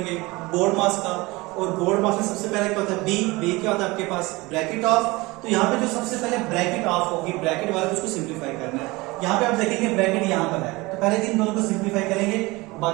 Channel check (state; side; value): quieter; left; 22.6 dB